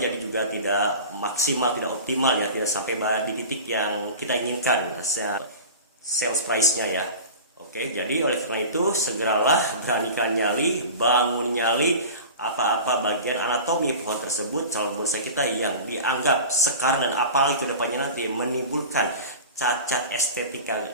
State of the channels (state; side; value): inverted; both; correlation -0.35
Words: jadi juga tidak maksimal, tidak optimal ya, tidak sampai di titik yang kita inginkan sales price-nya ya. Oke, jadi oleh karena itu segeralah beranikan nyali, bangun nyali apa-apa bagian anatomi pohon tersebut, calon bonsai kita yang dianggap sekar dan apalagi kedepannya nanti menimbulkan cacat estetika